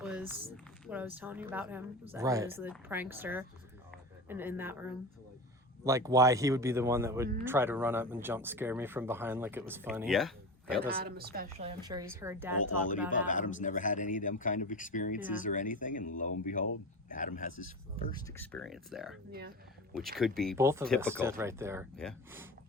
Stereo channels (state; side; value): normal; both; correlation 0.27